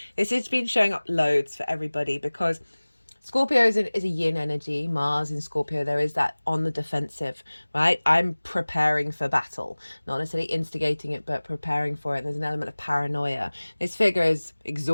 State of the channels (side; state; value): both; inverted; correlation -1.00